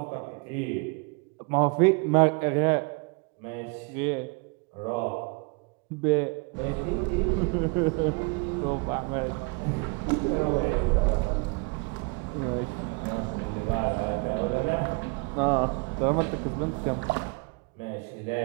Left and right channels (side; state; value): left; quieter; 30.9 dB